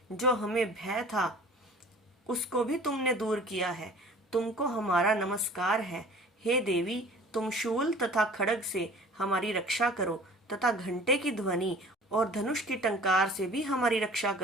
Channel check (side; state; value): both; normal; correlation 0.47